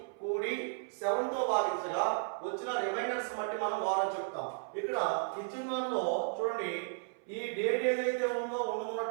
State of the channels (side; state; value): left; silent; 55 dB below the other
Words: కూడి 7 తో భాగించగా వచ్చిన రిమైండర్స్ బట్టి మనం వారం చెప్తాం. ఇక్కడ ఇచ్చిన దానిలో చూడండి, ఈ డేట్ ఏదైతే ఉందో